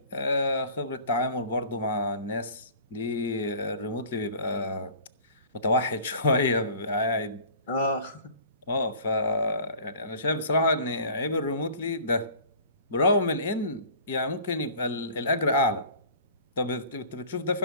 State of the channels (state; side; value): inverted; both; correlation -0.46